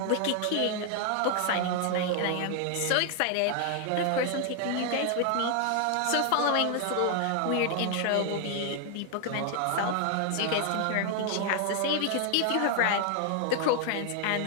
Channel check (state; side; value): different; both; correlation 0.00